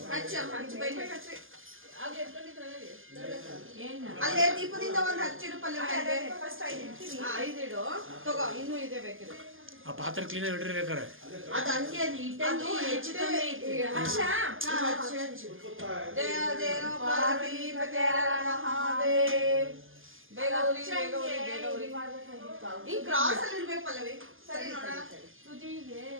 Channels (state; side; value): late; left; 0.59 ms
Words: ಹಚ್ಚು ಬೈಬೇಕು ಹಚ್ಚಿ. ಆಗ ಎತ್ಕೊಂಡಿದ್ರಲ್ಲ ಅಲ್ಲೇ ದೀಪದಿಂದ ಒಂದು ಹಚ್ಚಿಡು ಪಲ್ಯ ಫಸ್ಟ್ 5 ಇಡ್ತೀನಿ. 5 ಇಡು ತಗೋ, ಇನ್ನೂ ಇದೆ ಬೇಕಿದೆ. ಆ ಪಾತ್ರೆ ಕ್ಲೀನ್ ಇಡ್ರಿ ಬೇಕಾರೆ. ಅದು ಹಂಗೆ ಅದು ಇಟ್ಟಂಗೆ ಹೆಚ್ಚು ಕಮ್ಮಿ ಐತಿ. ಹಚ್ಚು. ಜಯ ಜಯ ಪಾರ್ವತಿ ಮಹಾದೇವ್. ಬೇಗ ಉರಿ. ಈ ಕ್ರಾಸ್ ಅಲ್ಲಿ ಇರ್ಬೇಕು ಪಲ್ಲವಿ. ಸರಿ ನೋಡೋಣ. ತುದಿಗೆ